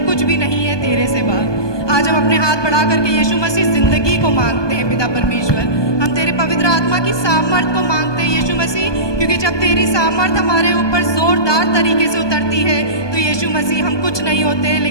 कुछ भी नहीं है तेरे सिवा। आज हम अपने हाथ बढ़ा करके यीशु मसीह जिंदगी को मांगते हैं पिता परमेश्वर। हम तेरे पवित्र आत्मा की सामर्थ को मांगते हैं यीशु मसीह, क्योंकि जब तेरी सामर्थ हमारे ऊपर जोरदार तरीके से उतरती है तो यीशु मसीह हम कुछ नहीं होते,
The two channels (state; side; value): late; right; 1.2 ms